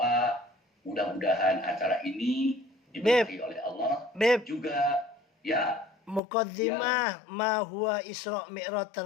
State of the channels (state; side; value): drops out; right; at 6.2 s